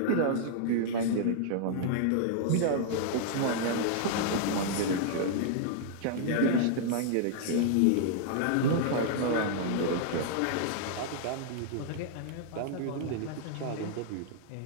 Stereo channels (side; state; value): both; different; correlation -0.01